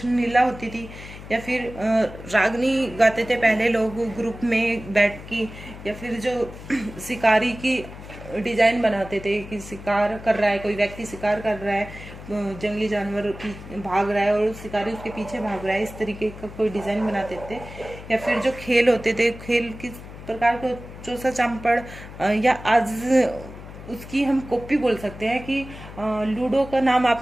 लीला होती थी, या फिर रागनी गाते थे पहले लोग ग्रुप में बैठ की, या फिर जो शिकारी की डिजाइन बनाते थे कि शिकार कर रहा है, कोई व्यक्ति शिकार कर रहा है, जंगली जानवर भाग रहा है और शिकारी उसके पीछे भाग रहा है, इस तरीके का कोई डिजाइन बनाते थे। या फिर जो खेल होते थे, खेल किस प्रकार को चौसा चांपड़, या आज उसकी हम कॉपी बोल सकते हैं कि लूडो का नाम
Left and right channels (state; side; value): noise; left; hum, 14 dB below the sound